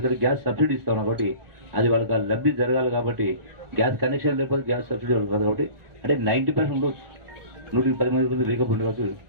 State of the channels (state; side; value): late; left; 1.4 ms